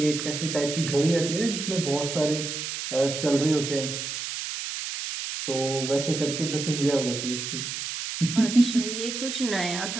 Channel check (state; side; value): noise; right; hiss, 5 dB below the sound